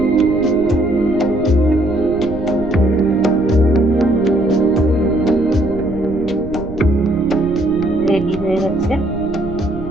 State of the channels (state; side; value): noise; right; rumble, 12 dB below the sound